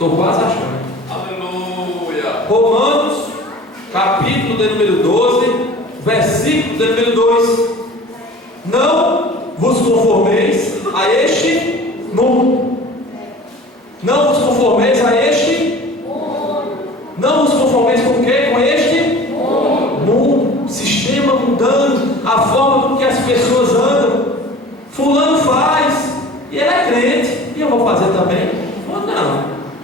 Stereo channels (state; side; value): normal; both; correlation 0.42